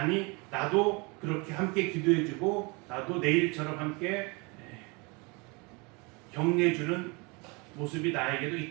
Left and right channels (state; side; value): quieter; left; 28.9 dB